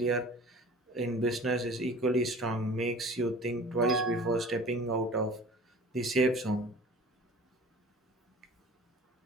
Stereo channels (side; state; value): both; normal; correlation 0.43